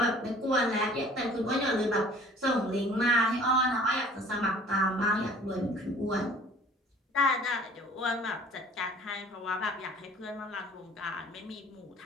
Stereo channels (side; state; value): both; normal; correlation 0.50